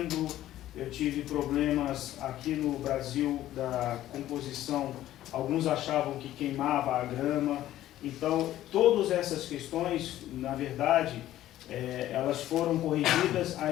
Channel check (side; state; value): right; quieter; 13.6 dB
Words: eu tive problemas aqui no Brasil da composição, alguns achavam que queimava a grama. Então todas essas questões, na verdade, elas foram corrigidas